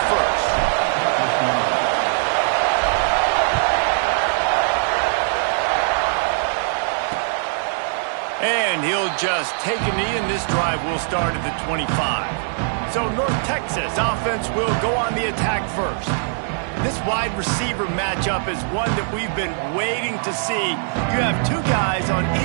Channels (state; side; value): silent; left; 59 dB below the other